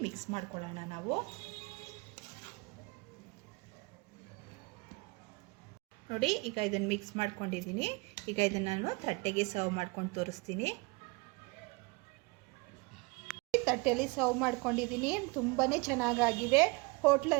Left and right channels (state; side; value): quieter; left; 27.3 dB